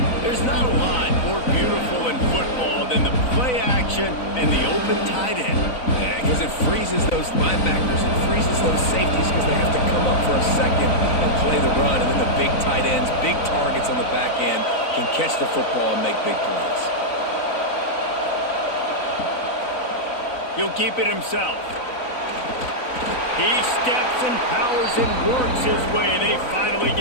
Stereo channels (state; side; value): late; right; 4.0 ms